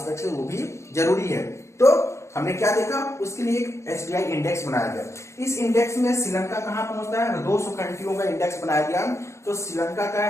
है वो भी जरूरी है। तो हमने क्या देखा, उसके लिए एक एसडीआई इंडेक्स बनाया गया। इस इंडेक्स में श्रीलंका कहां पहुंचता है, 200 कंट्रियों का इंडेक्स बनाया गया। तो श्रीलंका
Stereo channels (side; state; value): right; late; 0.14 ms